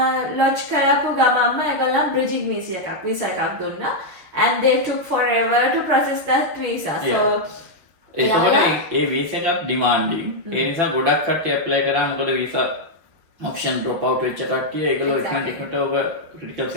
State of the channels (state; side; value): late; left; 6.4 ms